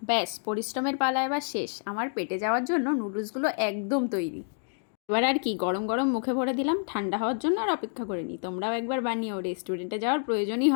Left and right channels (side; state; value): right; silent; digital silence